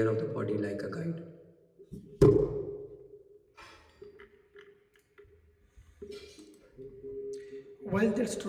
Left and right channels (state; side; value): identical; both; correlation 1.00